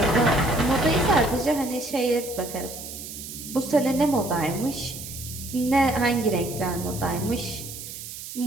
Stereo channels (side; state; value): right; noise; hiss, 11 dB below the sound